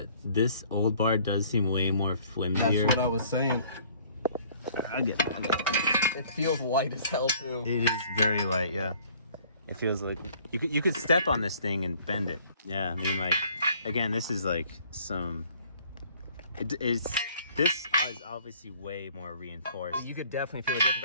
this old bar does seem way more flimsier. That's what I was saying. I'll get it. It feels light as hell too. It is very light, yeah. It feels like you could step on this thing and bend it. Yeah, I mean, like, again, this is like some. This is obviously way more reinforced. You could definitely feel the difference.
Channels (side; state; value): both; inverted; correlation -0.57